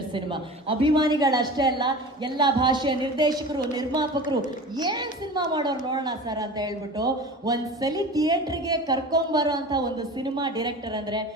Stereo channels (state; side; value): normal; both; correlation 0.35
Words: cinema. ಅಭಿಮಾನಿಗಳಷ್ಟೇ ಅಲ್ಲ, ಎಲ್ಲ ಭಾಷೆಯ ನಿರ್ದೇಶಕರು, ನಿರ್ಮಾಪಕರು ಏನ್ ಸಿನಿಮಾ ಮಾಡೋರು ನೋಡೋಣ ಸರ್ ಅಂತ ಹೇಳ್ಬಿಟ್ಟು ಒಂದ್ಸಲಿ ಥಿಯೇಟ್ರಿಗೆ ಕರ್ಕೊಂಬರೋ ಅಂತ ಒಂದು ಸಿನಿಮಾ ಡೈರೆಕ್ಟರ್ ಅಂದ್ರೆ